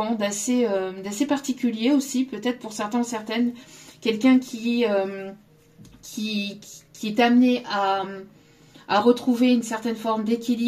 d'assez particulier aussi, peut-être pour certains ou certaines. Quelqu'un qui est amené à retrouver une certaine forme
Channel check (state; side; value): identical; both; correlation 1.00